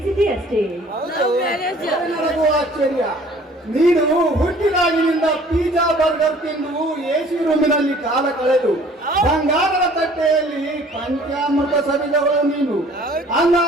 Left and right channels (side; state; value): both; normal; correlation 0.53